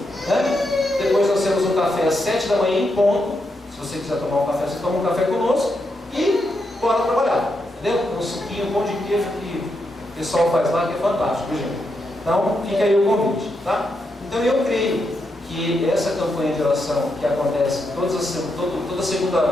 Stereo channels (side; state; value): both; normal; correlation 0.83